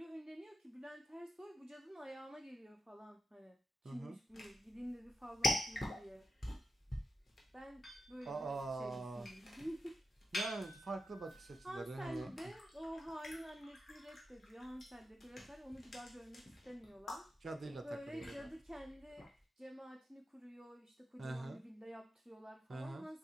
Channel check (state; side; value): normal; both; correlation 0.89